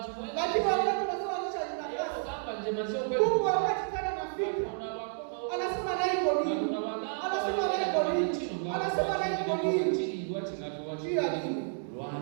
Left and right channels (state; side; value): silent; left; digital silence